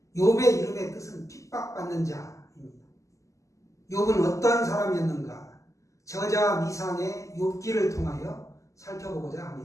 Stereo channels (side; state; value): right; late; 0.16 ms